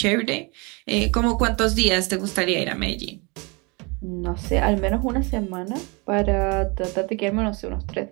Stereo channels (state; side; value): quieter; left; 29.1 dB